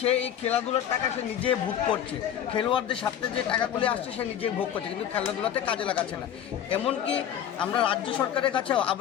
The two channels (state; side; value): quieter; right; 9.9 dB